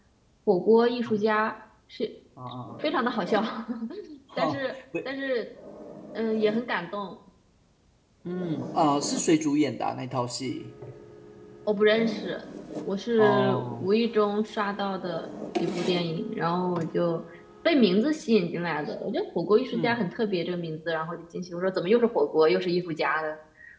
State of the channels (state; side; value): identical; both; correlation 1.00